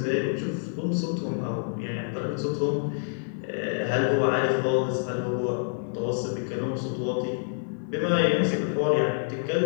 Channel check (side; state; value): right; silent; 60 dB below the other